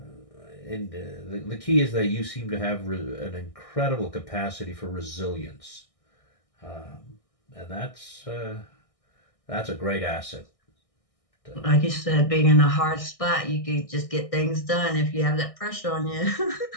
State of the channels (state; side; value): late; right; 1.6 ms